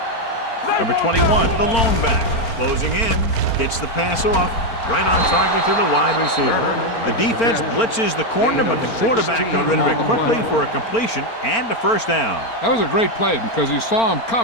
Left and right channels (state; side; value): late; right; 4.4 ms